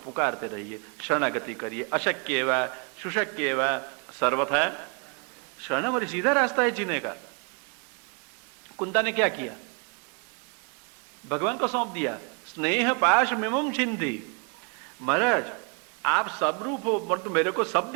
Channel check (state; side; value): quieter; left; 36.1 dB